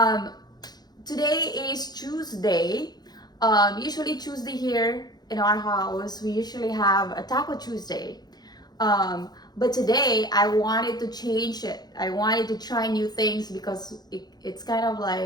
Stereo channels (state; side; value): late; right; 0.19 ms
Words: Today is Tuesday. Usually Tuesday here in our house, we usually have a Taco Tuesday. But today I wanted to change it. I wanted to try new things because it's kind of